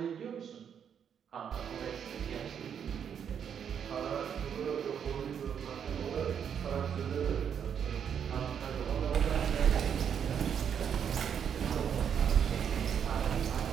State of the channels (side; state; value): left; quieter; 8.0 dB